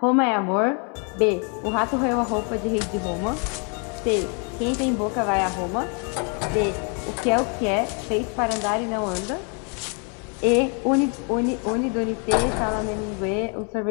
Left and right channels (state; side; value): quieter; right; 38.0 dB